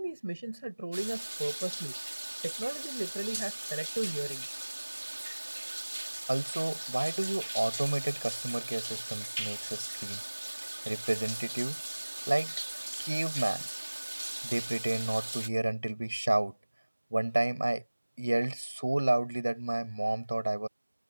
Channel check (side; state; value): both; inverted; correlation -1.00